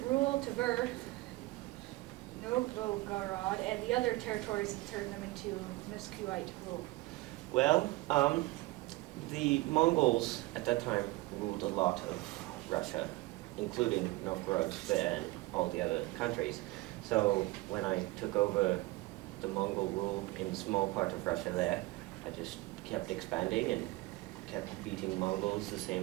rule Tver, Novgorod, and the other territories and turn them into Muscovite rule? Well, the Mongols at that time ruled a lot of Russia, including Novgorod and all the other countries. So when I took over the Mongol rule in a small part of Russia there, I just kept expanding and kept beating Mongols the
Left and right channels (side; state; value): left; quieter; 20.6 dB